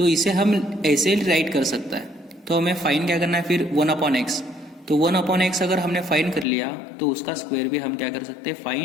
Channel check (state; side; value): drops out; right; at 6.5 s